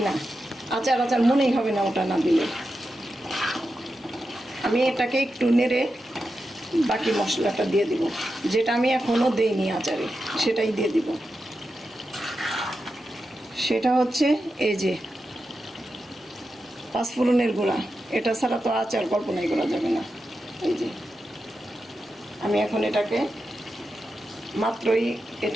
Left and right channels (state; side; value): normal; both; correlation 0.89